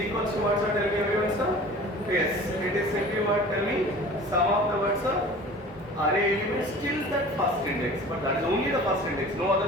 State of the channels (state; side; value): normal; both; correlation 0.42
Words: to what, sir? Tell me everyone, sir. Yes, it is simply what? Tell me sum of the words, sir. Array elements till that first index, but that is only the first index, no